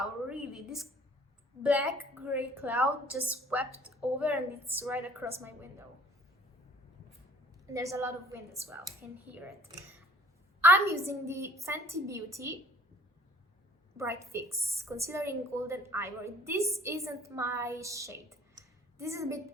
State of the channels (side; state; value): both; normal; correlation 0.55